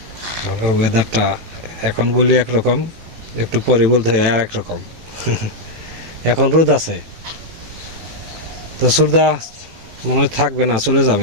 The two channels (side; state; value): left; late; 18 ms